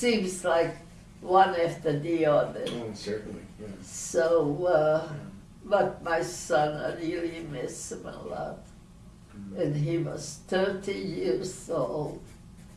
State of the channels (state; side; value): identical; both; correlation 1.00